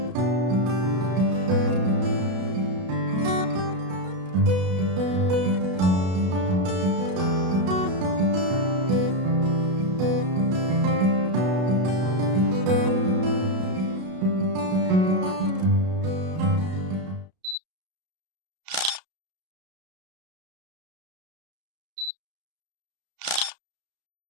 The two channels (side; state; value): left; late; 32 ms